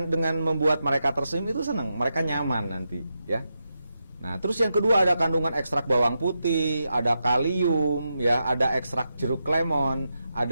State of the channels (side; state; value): both; inverted; correlation -0.87